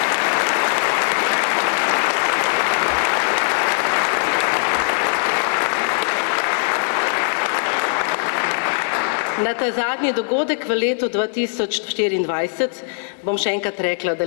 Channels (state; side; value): silent; right; digital silence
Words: Na ta zadnji dogodek v letu 2024 bom še enkrat rekla, da